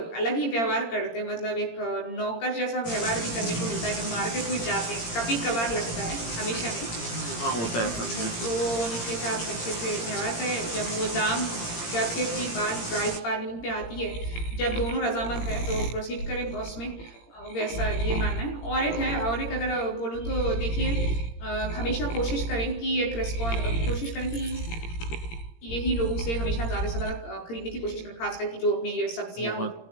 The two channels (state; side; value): late; right; 17 ms